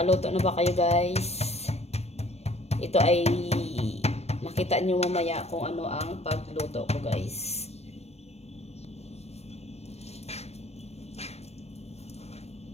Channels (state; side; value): late; right; 0.31 ms